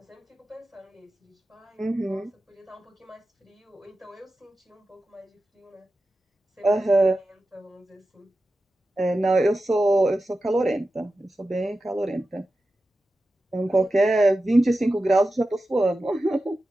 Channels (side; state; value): both; normal; correlation 0.92